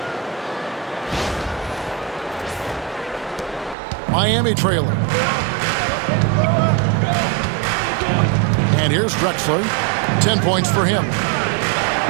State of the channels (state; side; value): drops out; left; at 3.8 s